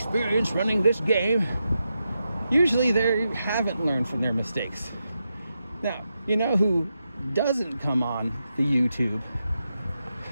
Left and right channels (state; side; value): inverted; both; correlation -0.87